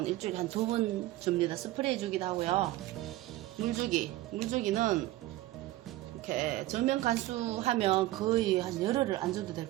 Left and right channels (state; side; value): quieter; left; 16.6 dB